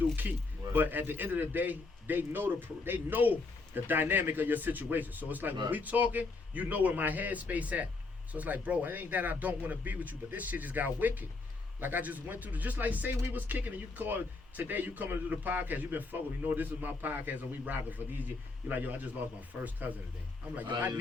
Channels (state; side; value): quieter; right; 3.8 dB